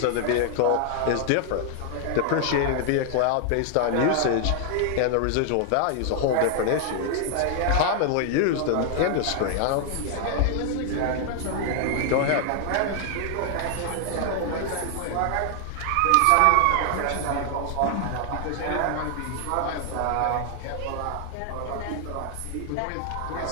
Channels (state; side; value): different; both; correlation 0.00